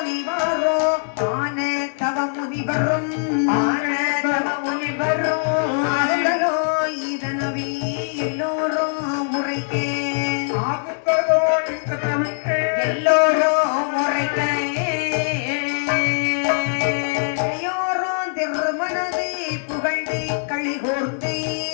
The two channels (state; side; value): silent; right; digital silence